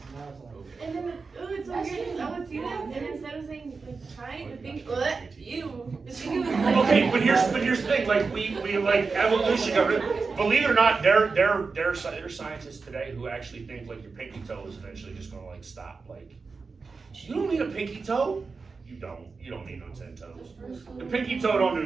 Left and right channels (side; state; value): left; quieter; 4.5 dB